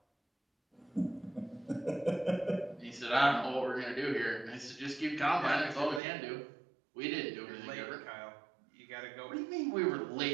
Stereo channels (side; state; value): left; drops out; at 6.0 s